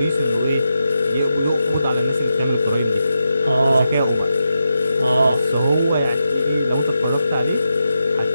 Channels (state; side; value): inverted; both; correlation -0.87